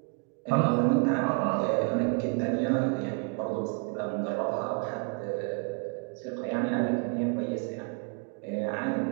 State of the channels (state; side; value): quieter; left; 35.8 dB